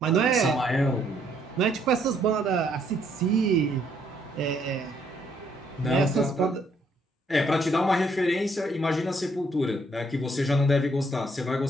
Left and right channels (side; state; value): both; normal; correlation 0.69